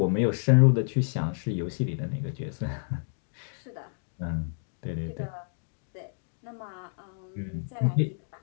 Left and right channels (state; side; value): silent; right; digital silence